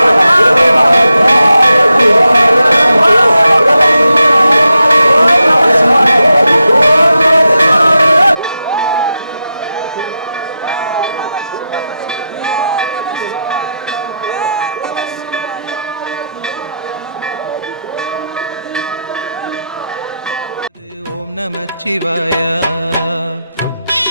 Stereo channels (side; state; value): both; inverted; correlation -0.88